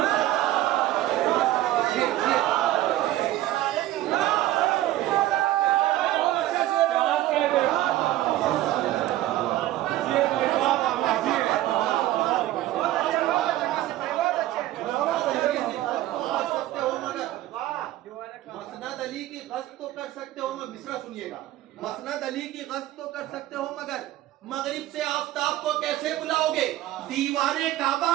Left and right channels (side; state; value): left; quieter; 14.8 dB